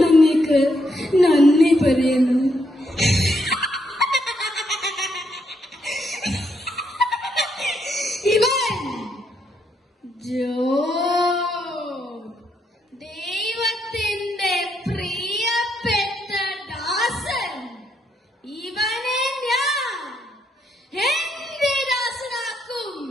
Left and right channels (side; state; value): both; normal; correlation 0.77